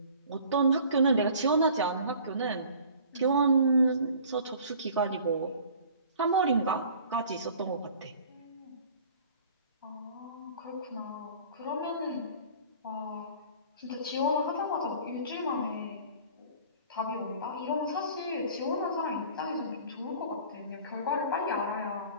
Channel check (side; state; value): both; inverted; correlation -0.48